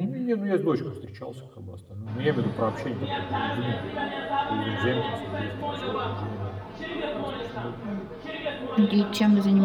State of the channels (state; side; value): identical; both; correlation 1.00